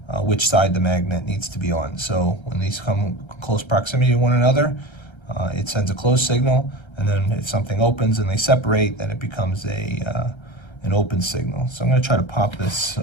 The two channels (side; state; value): right; late; 1.3 ms